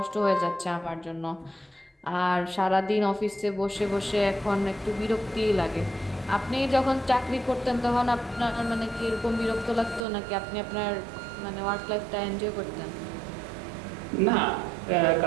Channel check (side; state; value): left; drops out; at 10.0 s